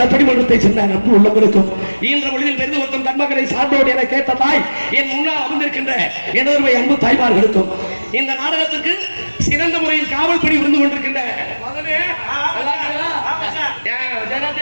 சேர்ந்த நட்பு உள்ளவர்களுக்கும் இன்ற மொழியில் பெரிது ஒருத்தம் தன்மகனை சார்ந்தோடு என கேட்ட தாய் என் முன்னால் அமர்ந்திருக்கின்ற எனது அன்பு தாய்மார்களுக்கும் இந்த நாடகத்திற்கு சிறந்த முறையில் காவல் பணி இருந்து கொண்டிருக்கின்ற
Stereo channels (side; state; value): both; inverted; correlation -1.00